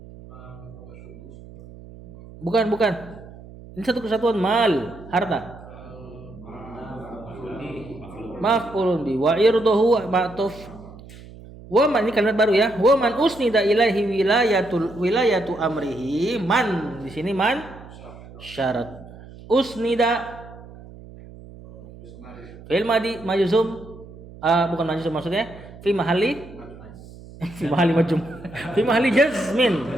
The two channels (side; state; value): right; noise; hum, 18 dB below the sound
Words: Bukan. Ini satu kesatuan mal, harta. Maf'ulun bi wa irduhu ma'tuf. Wa man, ini kalimat baru ya. Wa man usnida ilaihi wilayatu amrihi. Man di sini man syarat. Usnida fi'il madi majzum, bukan majzum maksudnya fi mahalli majzum. Fi mahalli jazmin.